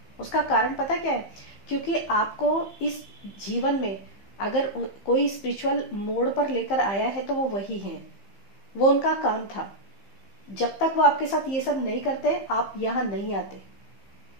उसका कारण पता क्या है? क्योंकि आपको इस जीवन में अगर कोई स्पिरिचुअल मोड़ पर लेकर आया है तो वो वही है, वो उनका काम था। जब तक वो आपके साथ ये सब नहीं करते आप यहाँ नहीं आते।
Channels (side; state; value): right; late; 15 ms